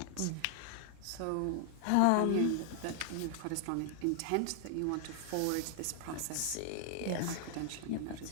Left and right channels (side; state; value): both; different; correlation 0.00